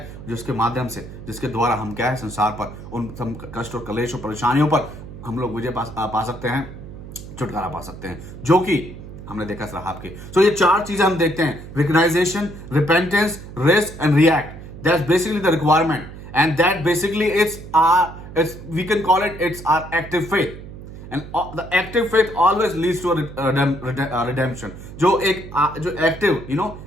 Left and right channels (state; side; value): noise; right; hum, 13 dB below the sound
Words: जिसके माध्यम से, जिसके द्वारा हम क्या है, संसार पर उन कष्ट और कलेश और परेशानियों पर हम लोग विजय पा सकते हैं, छुटकारा पा सकते हैं, जो कि हमने देखा रहाब के। सो ये 4 चीजें हम देखते हैं, recognition, repentance, rest and react. That's basically the requirement, and that basically we can call it's our active faith. And the active faith always leads to a redemption. जो एक्टिव